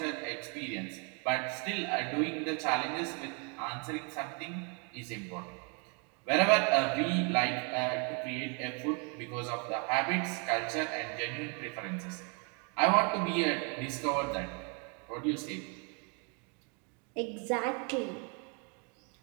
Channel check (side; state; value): left; quieter; 35.6 dB